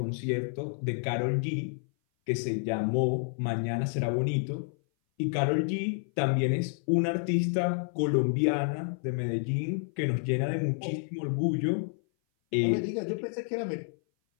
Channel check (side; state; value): right; silent; 57 dB below the other